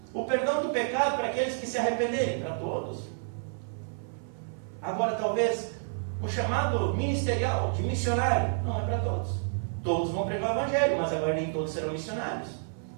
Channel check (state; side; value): silent; left; 58 dB below the other